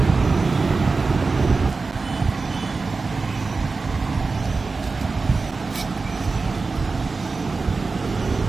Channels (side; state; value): left; quieter; 4.1 dB